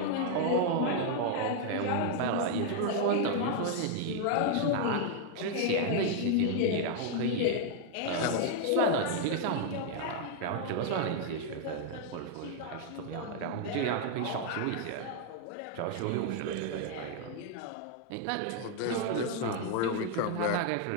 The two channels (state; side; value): different; both; correlation 0.00